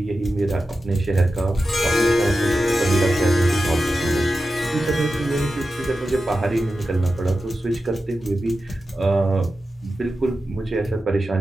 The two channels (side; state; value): both; normal; correlation 0.92